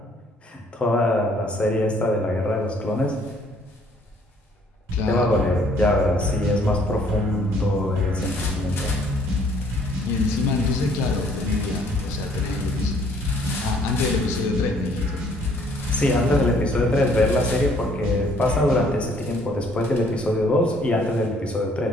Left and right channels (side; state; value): both; normal; correlation 0.62